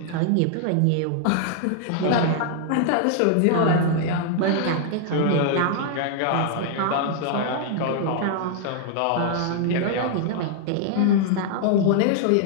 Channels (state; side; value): different; both; correlation 0.00